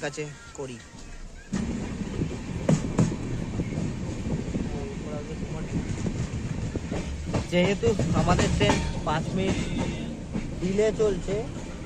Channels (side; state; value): both; identical; correlation 1.00